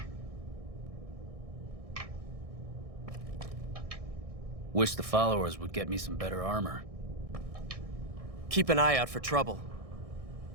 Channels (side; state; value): left; late; 1.6 ms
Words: Wish the followers would get me some better armor. Keep an eye out for trouble.